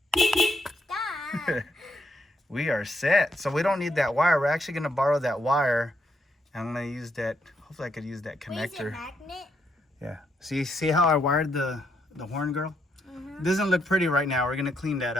Stop. We are set. So we don't need that wire. We're actually gonna borrow that wire. I'm gonna use that. Hopefully I could use that Wait, is it connector. magnet? Yeah. See how I wired the horn, girl? It doesn't look pretty right now. We're gonna clean that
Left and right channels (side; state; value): both; normal; correlation 0.78